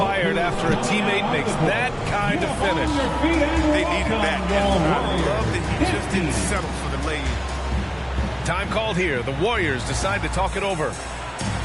after a teammate makes that kind of finish. They needed that. And I love that he just didn't settle for the lay-in. Time called here. The Warriors decide to talk it over.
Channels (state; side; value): identical; both; correlation 1.00